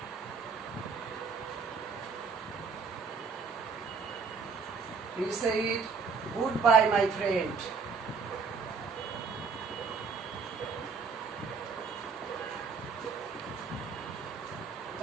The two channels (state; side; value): quieter; left; 5.1 dB